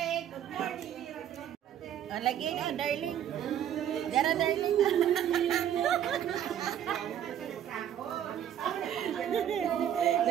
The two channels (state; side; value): quieter; left; 10.2 dB